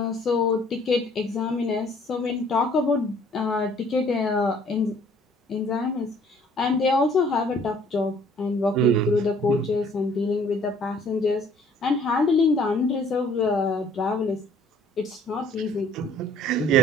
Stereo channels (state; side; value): normal; both; correlation 0.57